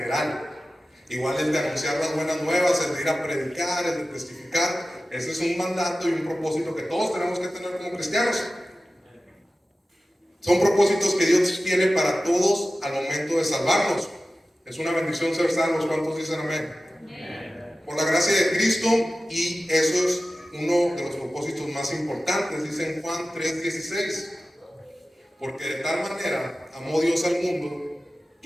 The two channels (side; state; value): both; normal; correlation 0.95